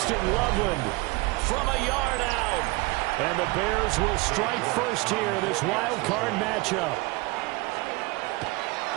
Loveland from a yard out. And the Bears will strike first here in this wild card matchup.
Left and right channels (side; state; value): left; quieter; 23.3 dB